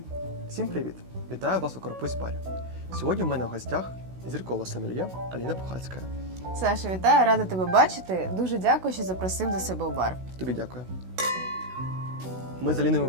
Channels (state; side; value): late; left; 16 ms